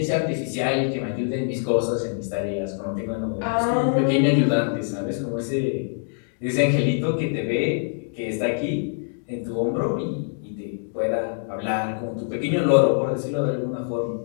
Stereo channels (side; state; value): right; silent; digital silence